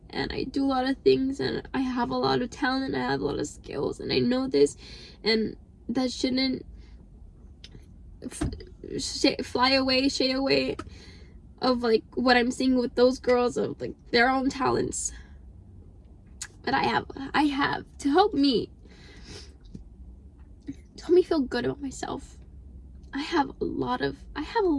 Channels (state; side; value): identical; both; correlation 1.00